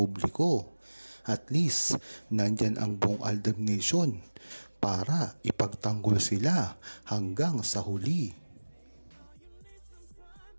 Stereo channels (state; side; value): inverted; both; correlation -1.00